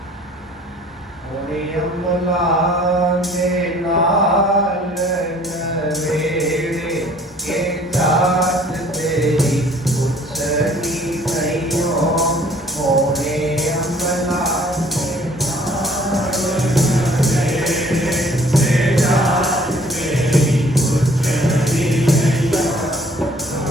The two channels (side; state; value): both; normal; correlation 0.56